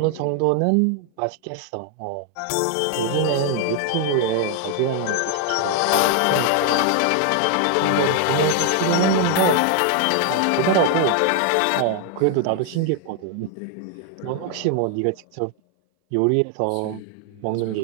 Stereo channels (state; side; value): different; both; correlation 0.00